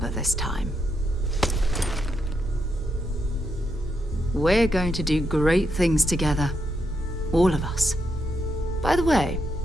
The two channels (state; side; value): normal; both; correlation 0.81